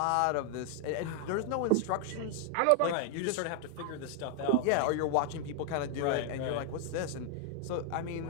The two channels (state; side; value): different; both; correlation 0.00